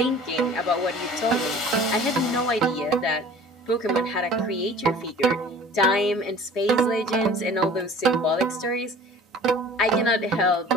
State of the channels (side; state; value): both; normal; correlation 0.46